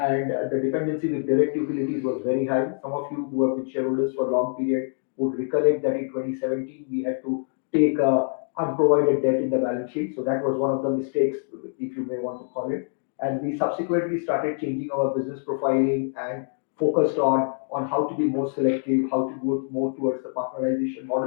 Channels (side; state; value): right; silent; digital silence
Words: dependency with direct utilities was very high. Some of you who have been shareholders for a long period would recollect that in 2017 we had to take unprovided debt in the balance sheet. So that was one of the mistakes, if you may want to call it. And we subsequently started changing our business profiling and focused on how to be more selective, how to go more towards the partnerization